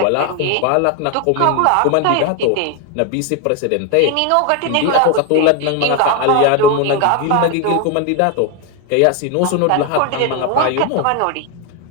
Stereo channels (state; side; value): different; both; correlation 0.01